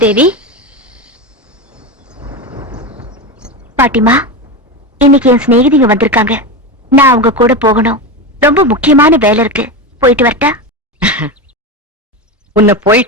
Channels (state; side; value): normal; both; correlation 0.19